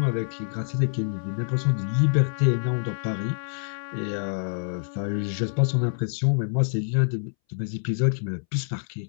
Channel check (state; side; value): silent; right; 61 dB below the other